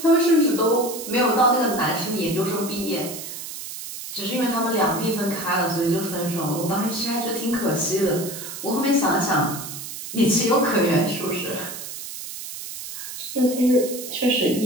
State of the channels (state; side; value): noise; right; hiss, 9 dB below the sound